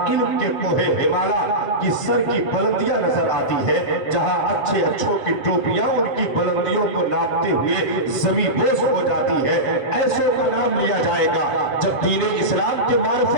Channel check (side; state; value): right; late; 7.6 ms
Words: علم کے کوہ ہمالا کی سر کی بلندیاں نظر آتی ہے، جہاں اچھے اچھوں کی ٹوپیاں ان کی بلندیوں کو ناپتے ہوئے زمین بوس ہو جاتی ہے، ایسے کا نام لیا جائے گا۔ جب دین اسلام کے